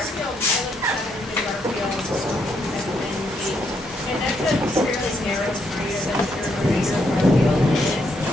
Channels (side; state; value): both; normal; correlation 0.76